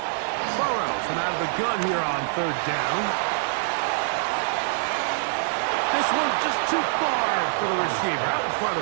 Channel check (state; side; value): silent; left; 62 dB below the other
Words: Burrow from out of the gun here on 3rd down. This one just too far for the receiver out in front